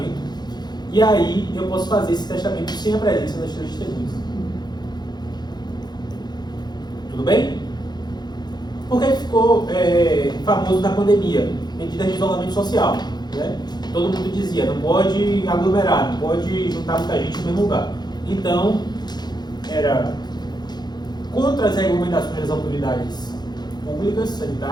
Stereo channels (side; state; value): right; late; 0.20 ms